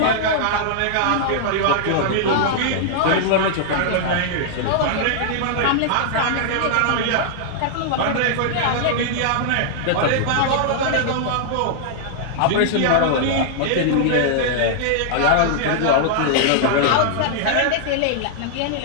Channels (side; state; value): both; different; correlation -0.01